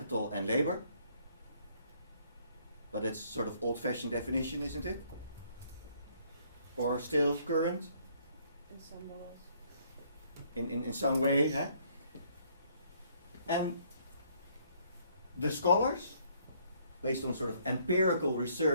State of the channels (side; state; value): both; inverted; correlation -0.65